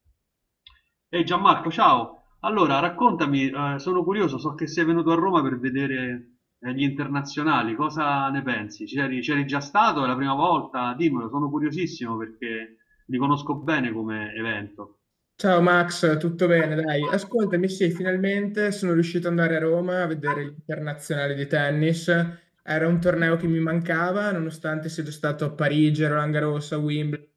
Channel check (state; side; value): identical; both; correlation 1.00